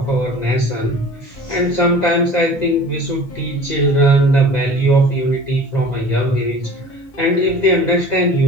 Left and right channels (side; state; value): both; normal; correlation 0.43